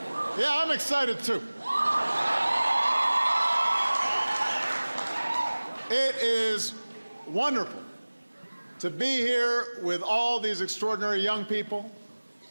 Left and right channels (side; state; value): both; inverted; correlation -1.00